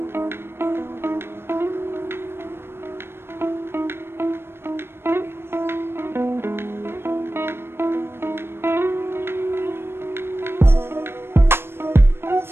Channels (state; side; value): late; left; 0.12 ms